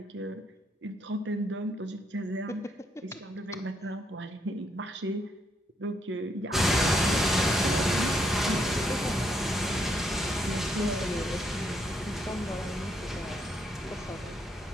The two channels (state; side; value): normal; both; correlation 0.74